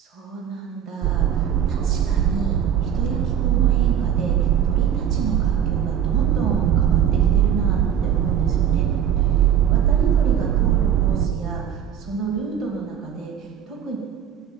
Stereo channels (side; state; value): left; quieter; 9.1 dB